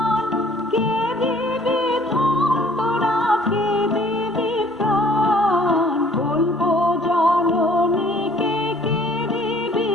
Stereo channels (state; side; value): normal; both; correlation 0.56